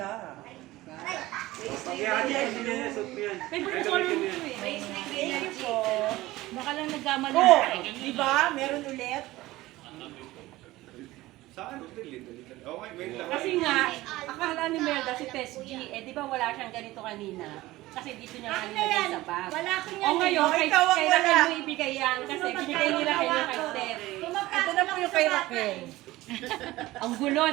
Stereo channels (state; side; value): quieter; left; 17.9 dB